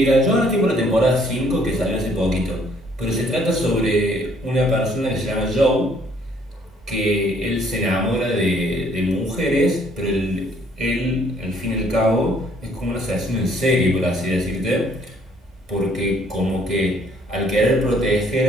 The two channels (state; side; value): normal; both; correlation 0.63